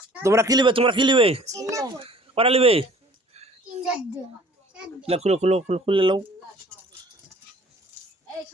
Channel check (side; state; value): both; normal; correlation 0.51